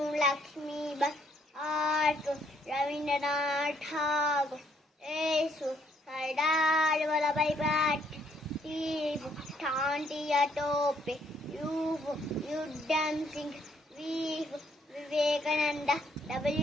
Lakshmi Ba. R for Rabindranath Tagore. S for Sardar Vallabhbhai Patel. T for Tantiya Tope. U for Udham Singh. V for Vivekananda.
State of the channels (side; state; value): both; normal; correlation 0.69